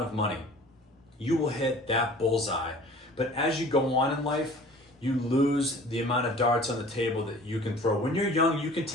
of money. You will hit that bullseye. But as you go on in life, you lose the amount of darts on the table that you can throw. When you're young, you can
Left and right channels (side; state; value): both; normal; correlation 0.46